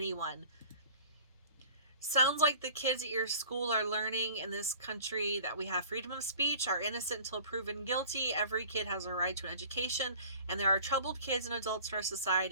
Sounds like the kids at your school are learning in this country that we have freedom of speech, are innocent until proven guilty. Every kid has a right to an education, and there are troubled kids and adults in our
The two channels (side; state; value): both; inverted; correlation -0.45